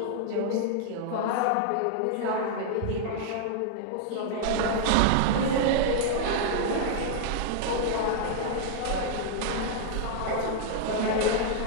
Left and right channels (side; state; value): both; different; correlation -0.01